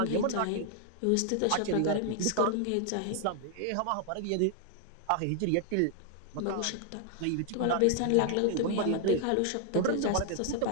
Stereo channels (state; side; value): different; both; correlation 0.00